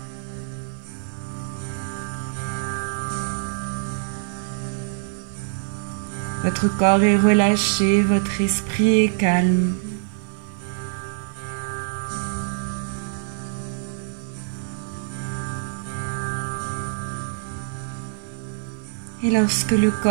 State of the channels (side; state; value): left; silent; 58 dB below the other